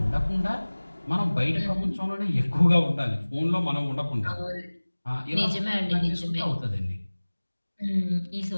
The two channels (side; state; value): both; inverted; correlation -1.00